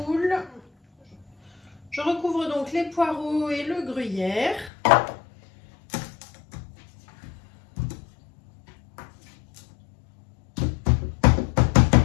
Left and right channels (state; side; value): drops out; right; at 4.7 s